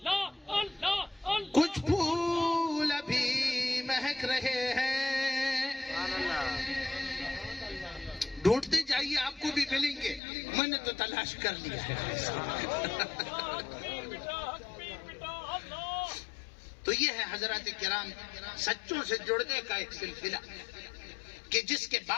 کچھ پھول ابھی مہک رہے ہیں، ڈھونڈتے جائیے آپ کو بھی ملیں گے، میں نے تو تلاش کر لیا ہے۔ تو یہ ہے حضرات کرام سچوں سے جڑنے کا ایک سلسلہ کہ جس کے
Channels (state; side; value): drops out; right; at 10.2 s